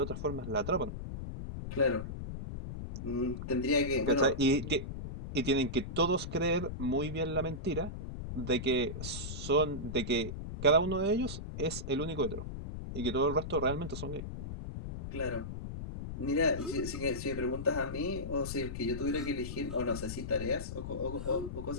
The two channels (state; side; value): noise; left; rumble, 7 dB below the sound